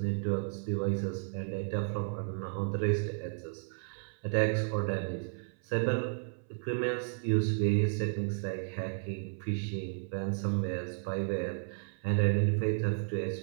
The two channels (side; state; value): left; silent; 56 dB below the other